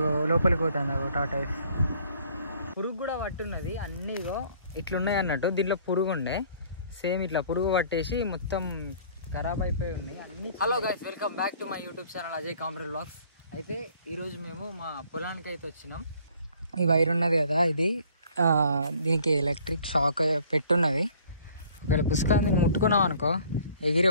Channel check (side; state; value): both; inverted; correlation -0.56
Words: లోపలికి పోతుంది టాటాయిస్. పురుగు కూడా పట్టున్నది. అన్నీగో ఇట్లున్నాయి అన్నట్టు. దీంట్లో పురుగు ఉండే సేమ్ ఇట్లా పురుగు పట్టేసి మొత్తం ఖరాబ్ అయిపోయి ఉన్నాయి అన్ని. Hello guys, welcome back to my YouTube channel Ajay comrade vlogs. అయితే ఈరోజు మేము మా పొలానికి అయితే వచ్చినాం. ఈ వైర్ ఉన్నది కదా, ఇది దీనికి ఎలక్ట్రిక్ షాక్ పెట్టున్నది. ఒకవేళ పుస్తకాన్ని ముట్టుకున్నాం అనుకో ఎగిరి